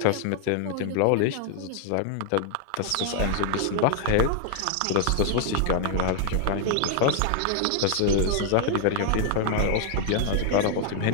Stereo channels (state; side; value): different; both; correlation 0.00